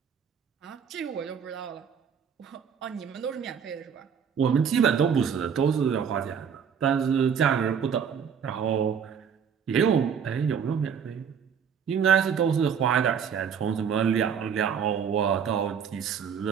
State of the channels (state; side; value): quieter; left; 7.3 dB